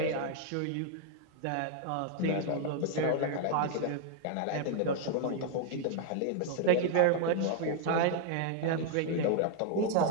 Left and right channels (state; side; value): different; both; correlation 0.00